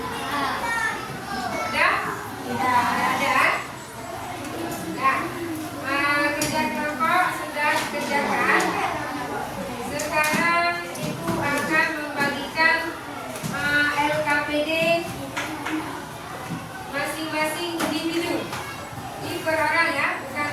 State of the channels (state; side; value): identical; both; correlation 1.00